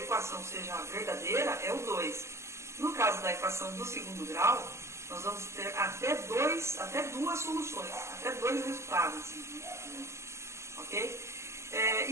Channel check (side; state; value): left; late; 0.13 ms